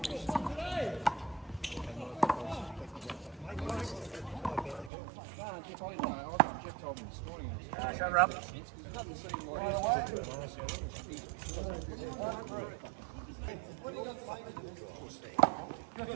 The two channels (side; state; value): left; drops out; at 4.9 s